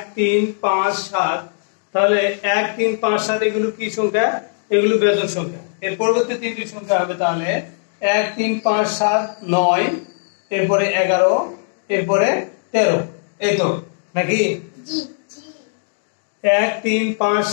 3 5 7। তাহলে 1 3 5 7 এগুলো কি সংখ্যা? এগুলো বেজোড় সংখ্যা। এর পরবর্তী তিনটি সংখ্যা হবে তাহলে 1 3 5 7 9, এরপরে 11, এরপরে 13। এই তো নাকি? 1 3 5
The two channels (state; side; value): silent; right; 66 dB below the other